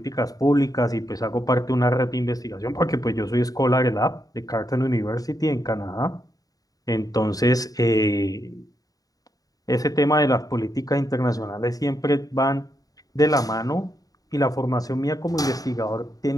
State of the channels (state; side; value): late; right; 0.18 ms